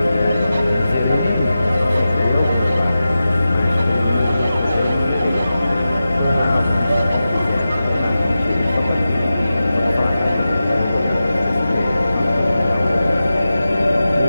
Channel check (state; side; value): inverted; both; correlation -0.93